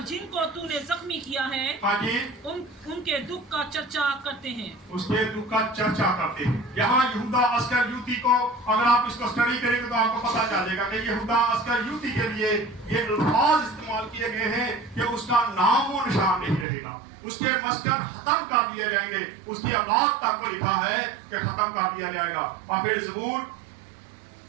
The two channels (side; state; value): left; drops out; at 16.7 s